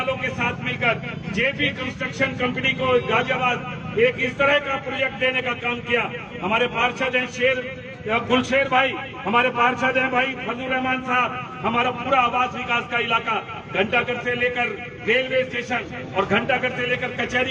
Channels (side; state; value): both; identical; correlation 1.00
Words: के साथ मिलकर जेपी कंस्ट्रक्शन कंपनी को गाजियाबाद एक इस तरह का प्रोजेक्ट देने का काम किया। हमारे पार्षद हैं गुलशेर भाई, हमारे पार्षद हैं भाई फजलुर रहमान साहब, हमारा पूरा आवास विकास का इलाका घंटाघर से लेकर रेलवे स्टेशन और घंटाघर से लेकर